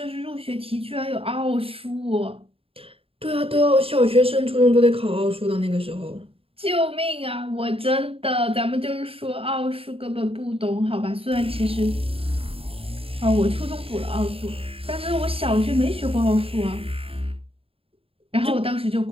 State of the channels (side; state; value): left; late; 0.27 ms